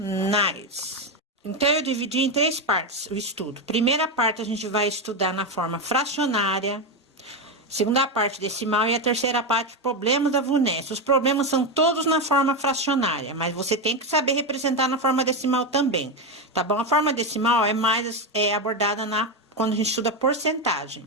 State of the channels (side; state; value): both; normal; correlation 0.11